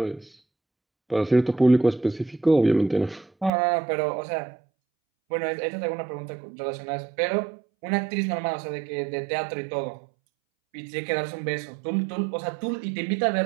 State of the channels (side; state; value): left; drops out; at 3.5 s